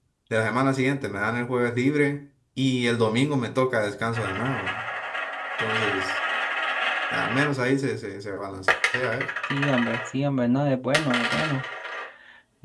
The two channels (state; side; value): identical; both; correlation 1.00